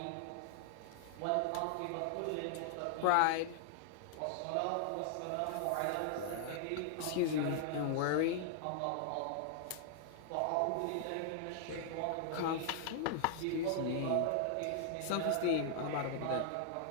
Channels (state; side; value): different; both; correlation -0.01